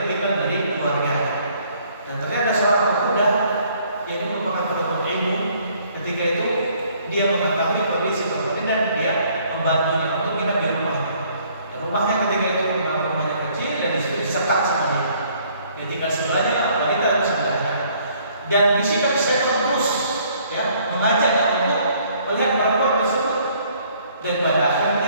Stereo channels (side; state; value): both; inverted; correlation -0.62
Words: dari keluarganya, dan ternyata seorang pemuda yang merupakan penuntut ilmu. Ketika itu dia mengetahui kondisi seperti ini dan dia membantunya untuk menginap di rumahnya. Dan rumahnya ketika itu memang rumahnya kecil dan disitu disekat sama dia. Dia tinggal sebelahnya, wanita di sebelahnya. Dan bisikan setan terus mengajaknya untuk melihat perempuan tersebut. Dan pada